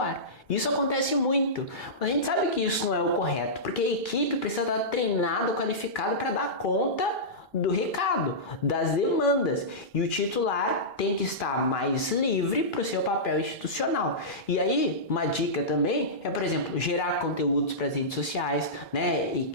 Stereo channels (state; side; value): normal; both; correlation -0.15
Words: Isso acontece muito, mas a gente sabe que isso não é o correto, porque a equipe precisa estar treinada, qualificada para dar conta do recado, das demandas, e o titular tem que estar mais livre para o seu papel institucional. E aí, uma dica também é, por exemplo, gerar conteúdos para as redes sociais, né, e